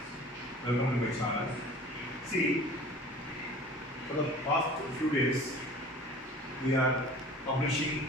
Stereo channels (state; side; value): normal; both; correlation 0.44